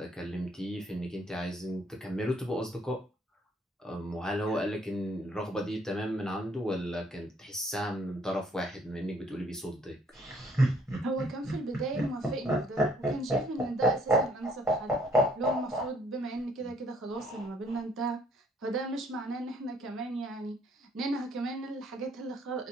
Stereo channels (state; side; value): normal; both; correlation 0.64